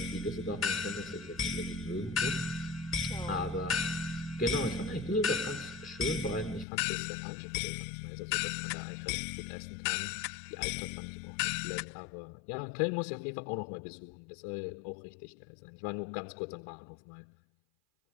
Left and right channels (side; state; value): right; drops out; at 6.7 s